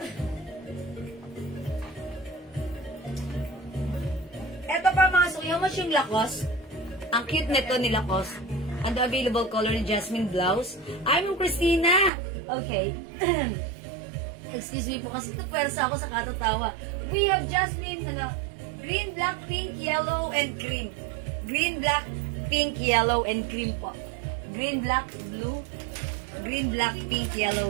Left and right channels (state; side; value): drops out; left; at 12.1 s